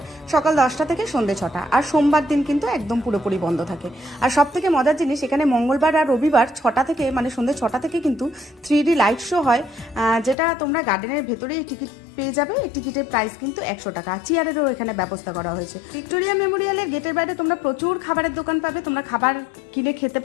সকাল 10টা থেকে সন্ধ্যে 6টা, আর সোমবার দিন কিন্তু একদম পুরোপুরি বন্ধ থাকে। আর সব থেকে মজার জিনিস, এখানে মঙ্গলবার আর রবিবার 6টা থেকে মানে সন্ধ্যে 6টা থেকে কিন্তু 3D লাইট শো হয়, যেটা তোমরা গার্ডেনের ভেতরেই টিকিট পেয়ে যাবে। এই টিকিটের প্রাইস কিন্তু 100 টাকা। চেয়ারেরও এখানে ব্যবস্থা করা হয়েছে। ভিক্টোরিয়া মেমোরিয়ালের গেটের বাইরে তোমরা প্রচুর খাবারের দোকান পাবে, তোমরা খাবার কিনে খেতে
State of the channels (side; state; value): right; drops out; at 10.4 s